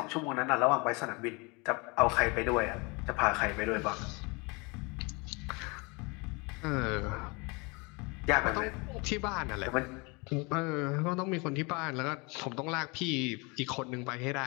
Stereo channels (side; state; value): right; quieter; 28.7 dB